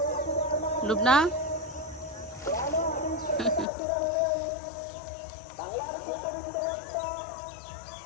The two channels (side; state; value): right; drops out; at 3.7 s